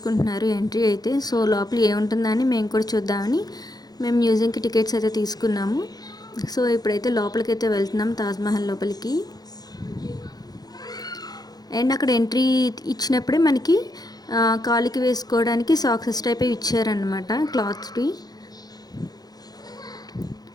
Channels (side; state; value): right; late; 0.19 ms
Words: ఎంట్రీ అయితే. సో లోపల ఏముంటుందా అని మేము కూడా చూద్దామని మేము మ్యూజియంకి టికెట్స్ అయితే తీసుకున్నాము. సో ఇప్పుడైతే లోపలికి అయితే వెళ్తున్నాం, తాజ్మహల్ లోపలికి. అండ్ అక్కడ ఎంట్రీ ఇచ్చినప్పుడే మనకి కాలుకి వేసుకోవడానికి సాక్సెస్ టైప్ ఇచ్చారనమాట, క్లాత్స్వి.